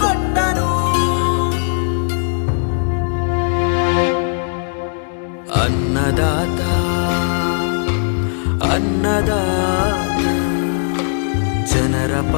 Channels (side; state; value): right; silent; digital silence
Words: ಅನ್ನದಾತ ಅನ್ನದಾತ ಜನರ